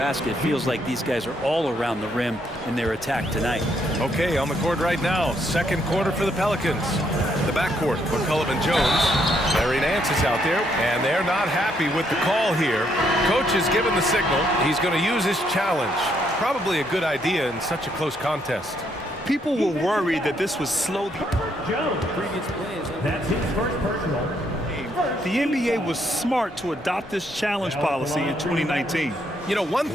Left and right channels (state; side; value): normal; both; correlation 0.73